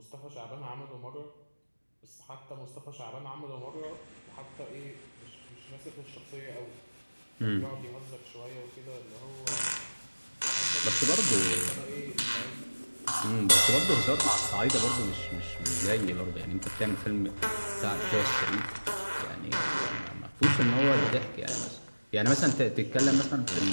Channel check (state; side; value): inverted; both; correlation -1.00